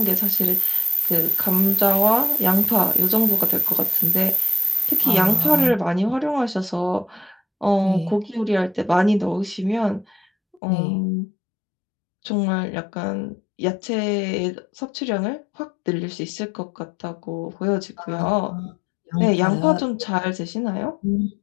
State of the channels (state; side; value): drops out; right; at 10.6 s